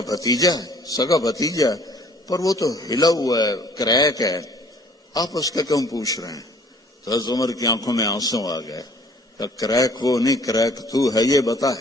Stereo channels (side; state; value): both; normal; correlation 0.55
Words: بھتیجا ہے، سگا بھتیجا ہے، پر وہ تو ہلا ہوا ہے، کریک ہے، آپ اس کا کیوں پوچھ رہے ہیں؟ تو حضرت عمر کی آنکھوں میں آنسو آ گئے. کہ کریک وہ نہیں، کریک تو ہے، یہ بتا